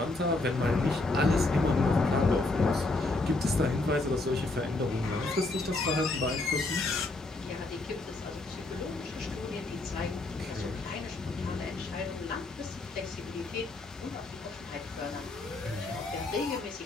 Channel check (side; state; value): right; quieter; 3.0 dB